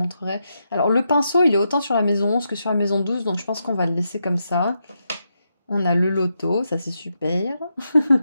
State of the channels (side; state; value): both; inverted; correlation -0.84